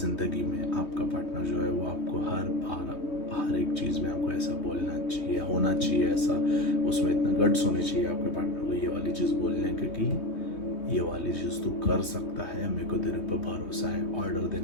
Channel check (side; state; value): right; late; 3.2 ms